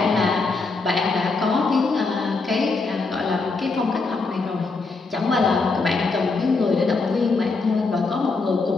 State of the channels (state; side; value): quieter; right; 3.9 dB